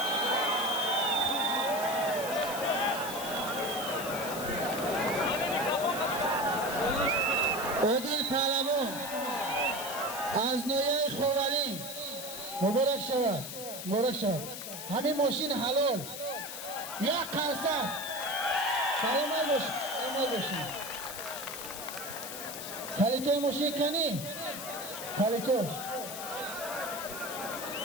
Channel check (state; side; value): noise; left; hiss, 8 dB below the sound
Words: عادل پهلوان از نویه خوانی مبارک شود، مبارک شود. همین ماشین حلال یک قرصد سلامت باشید، سلامت باشید. کلیتای ماشین کنی؟ کلیتو